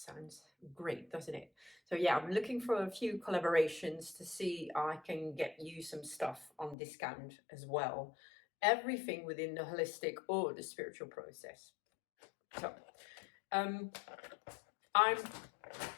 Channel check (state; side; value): drops out; right; at 6.8 s